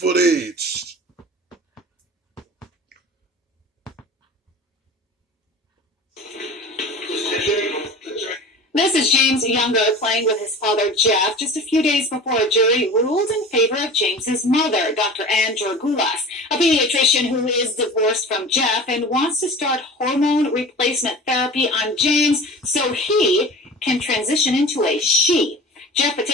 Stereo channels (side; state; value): both; normal; correlation 0.37